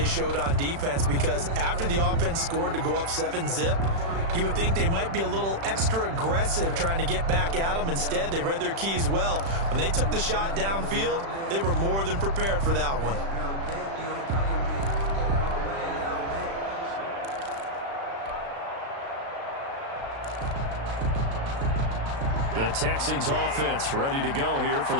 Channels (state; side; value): late; left; 36 ms